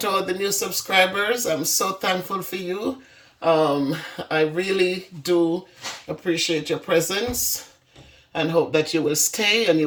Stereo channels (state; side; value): identical; both; correlation 1.00